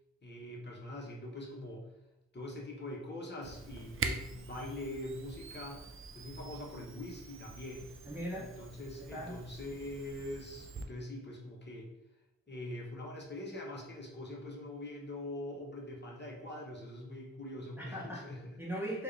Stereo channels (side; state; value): both; normal; correlation 0.40